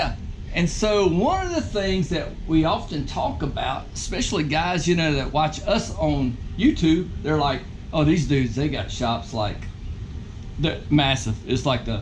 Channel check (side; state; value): both; identical; correlation 1.00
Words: And so one of the things that we often talk about, especially guys, you know, that watch us on YouTube, they're like, oh, these dudes, they got shops like, they're massive. It's like